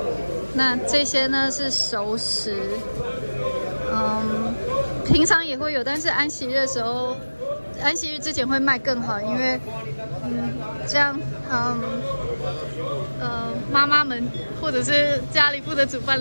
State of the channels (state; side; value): inverted; both; correlation -1.00